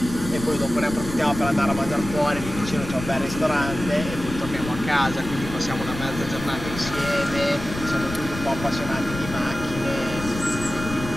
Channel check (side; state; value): left; noise; rumble, 9 dB below the sound